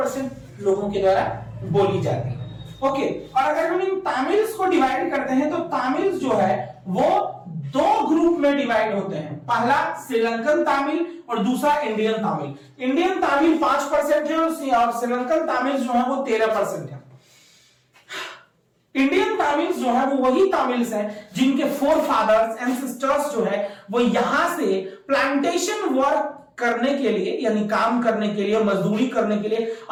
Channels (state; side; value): identical; both; correlation 1.00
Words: लोगों के द्वारा बोली जाती है। ओके, और अगर हम इन तमिल्स को डिवाइड करते हैं तो तमिल्स जो है वो दो ग्रुप में डिवाइड होते हैं, पहला श्रीलंकन तमिल और दूसरा इंडियन तमिल। इंडियन तमिल 5% है और श्रीलंकन तमिल जो है वो 13% है। इंडियन तमिल्स जो है वो वही तमिल्स हैं जिनके फोर फादर्स एंसेस्टर्स जो है वो यहां से प्लांटेशन वर्क करने के लिए, यानी काम करने के लिए, मजदूरी करने के लिए